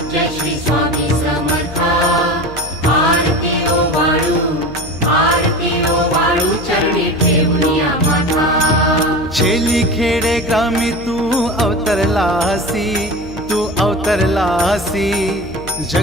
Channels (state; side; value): noise; left; hum, 15 dB below the sound